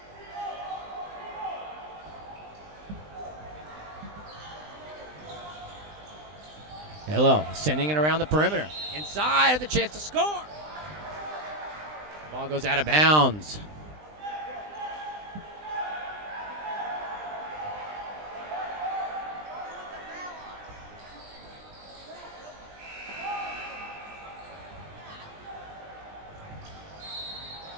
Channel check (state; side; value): late; left; 20 ms